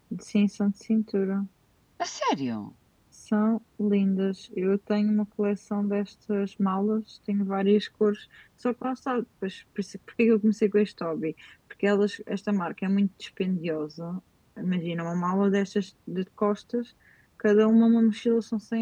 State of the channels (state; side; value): identical; both; correlation 1.00